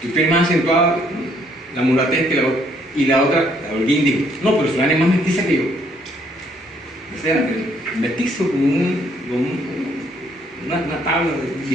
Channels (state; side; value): normal; both; correlation 0.67